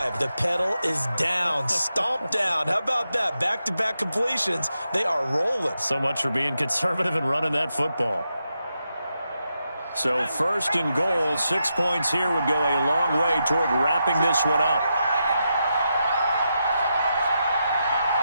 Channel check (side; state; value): both; inverted; correlation -0.85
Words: The pedal is down, stomp down. How about that? Back-to-back completions. They are rolling. So much for being conservative and running that football. So first and goal, 6 points here would go a long way toward wrapping this one up.